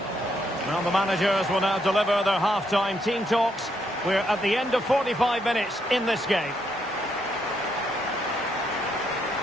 Well, the managers will now deliver their half-time team talks. We're at the end of 45 minutes in this game.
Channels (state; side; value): normal; both; correlation 0.76